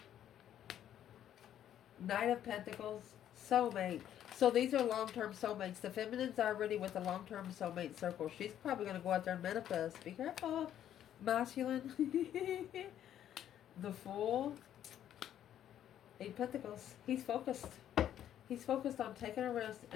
Knight of Pentacles, soulmate. So these are long-term soulmates. The feminine's already with the long-term soulmate circle. She's probably going to go out there and manifest. Be careful, masculine. The Fool. 8 Pentacles. He's focused. He's focused on taking a risk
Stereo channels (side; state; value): right; quieter; 10.8 dB